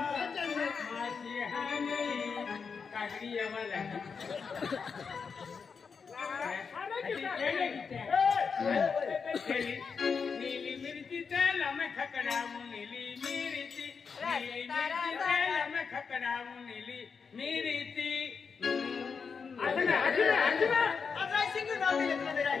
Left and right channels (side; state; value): right; quieter; 5.7 dB